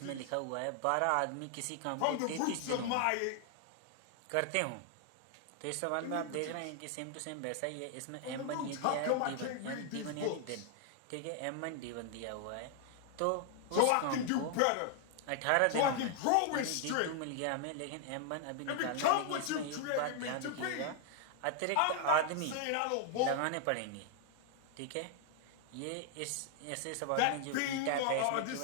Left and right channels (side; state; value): both; different; correlation 0.00